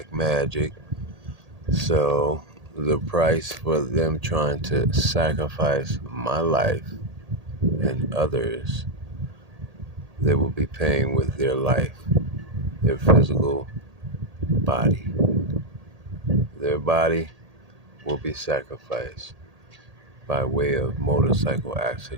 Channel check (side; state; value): left; late; 1.8 ms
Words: magic. So, the price for them trying to sacrifice my life and others, they will be paying with their life, their physical body. Their body will be sacrificed by way of motorcycle